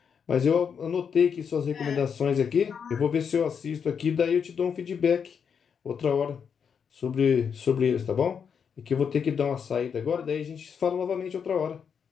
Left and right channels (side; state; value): right; quieter; 6.9 dB